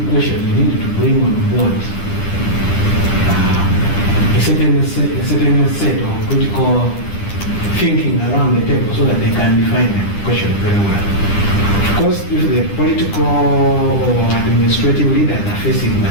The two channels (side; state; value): right; late; 10 ms